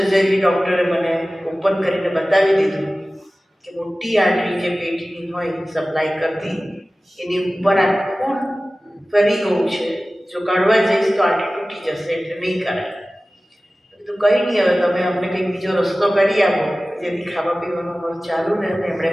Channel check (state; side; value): normal; both; correlation 0.97